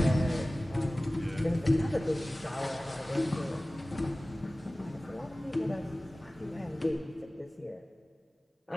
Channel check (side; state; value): both; normal; correlation 0.98